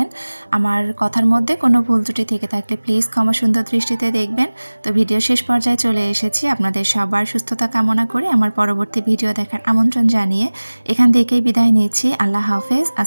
আমার কথার মধ্যে কোনো ভুল ত্রুটি থেকে থাকলে প্লিজ ক্ষমা সুন্দর দৃষ্টিতে দেখবেন। তো ভিডিও শেষ পর্যায়ে চলে এসেছি। আপনাদের সবার সুস্থতা কামনা করে আমার পরবর্তী ভিডিও দেখার আমন্ত্রণ জানিয়ে এখান থেকেই বিদায় নিচ্ছি। আল্লাহ হাফেজ।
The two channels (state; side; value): inverted; both; correlation -1.00